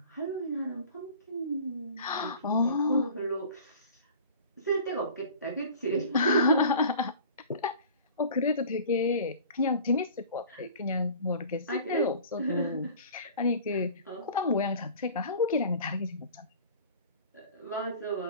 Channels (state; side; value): inverted; both; correlation -0.43